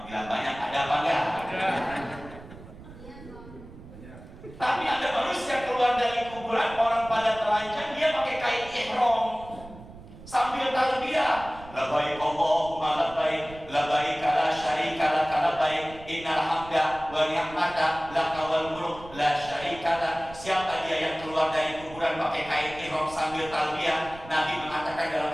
bilang banyak. Ada apa enggak? Tapi ada manusia keluar dari kuburan, orang pada telanjang, dia pakai kain ihram sambil talbiyah. Labbaik Allahumma labbaik, labbaik la syarika lak labbaik, innal hamda wa ni'mata laka wal mulk la syarika lak. Siapa dia yang keluar dari kuburan pakai kain ihram sambil talbiyah? Nabi mengatakan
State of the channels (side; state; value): right; noise; rumble, 17 dB below the sound